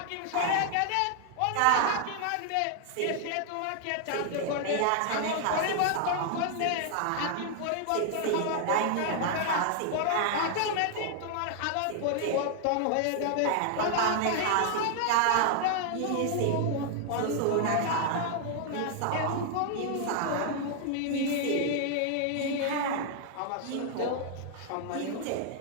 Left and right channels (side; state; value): both; different; correlation 0.00